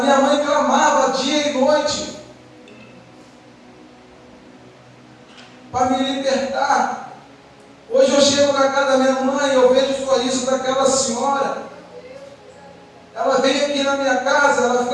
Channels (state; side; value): identical; both; correlation 1.00